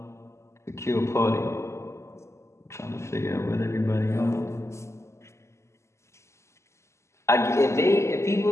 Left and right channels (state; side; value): late; right; 0.13 ms